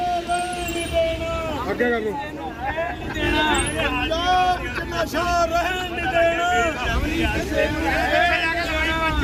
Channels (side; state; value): both; identical; correlation 1.00